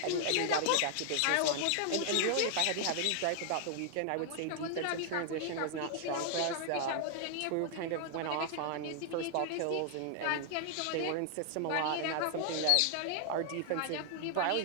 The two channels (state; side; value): different; both; correlation 0.00